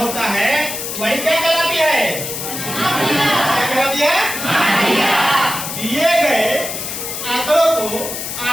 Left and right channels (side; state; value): left; noise; hiss, 6 dB below the sound